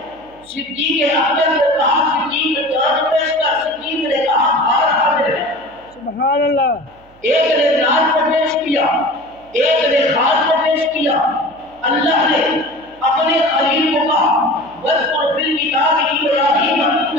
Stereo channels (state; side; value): noise; right; hum, 29 dB below the sound